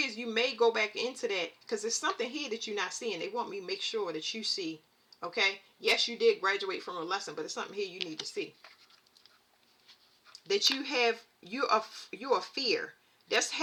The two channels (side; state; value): both; identical; correlation 1.00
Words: you may go back into that because there's something here that you're not seeing. They want me to make sure that you see. Okay? Yes, you did graduate from a lesson, but there's something here you need to see. That you are fear. That's